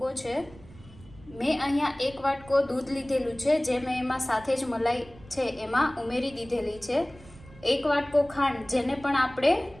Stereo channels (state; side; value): noise; right; rumble, 21 dB below the sound